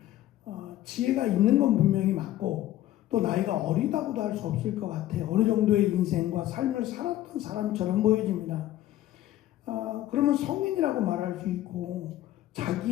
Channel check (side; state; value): right; quieter; 13.9 dB